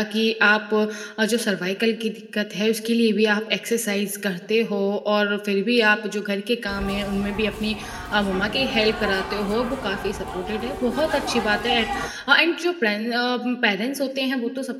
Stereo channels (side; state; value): both; identical; correlation 1.00